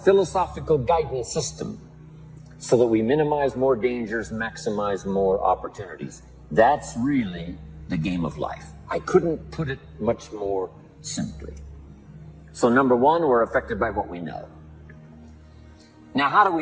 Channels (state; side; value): identical; both; correlation 1.00